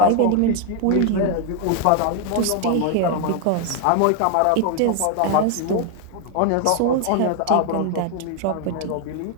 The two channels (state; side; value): different; both; correlation 0.01